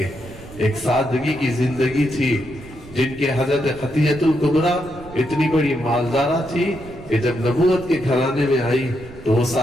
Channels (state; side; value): noise; right; rumble, 18 dB below the sound